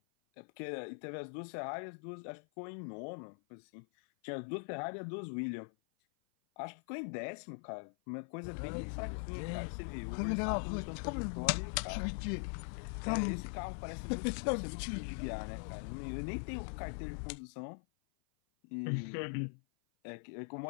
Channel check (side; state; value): right; silent; 50 dB below the other